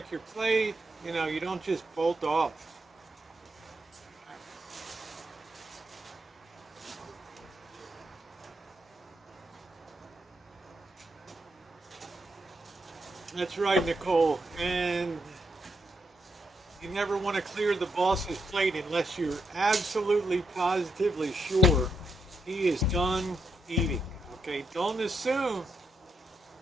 your plate. You know, you don't just bolt off. That's right, Nicole. And you never want to clear the boss's plate unless you're absolutely positively sure he is done eating. Okay, don't assume.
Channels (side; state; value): both; normal; correlation 0.81